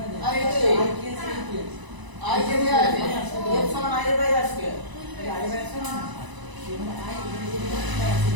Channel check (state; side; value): late; left; 1.0 ms